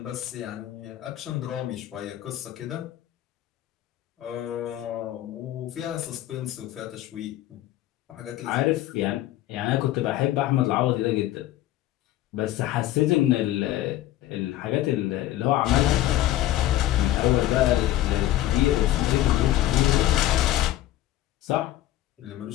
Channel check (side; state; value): right; quieter; 14.2 dB